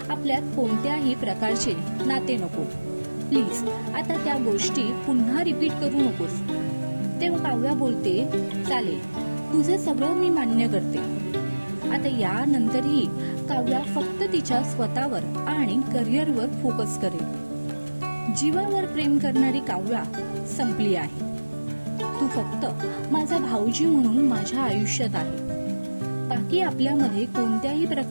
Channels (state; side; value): inverted; both; correlation -1.00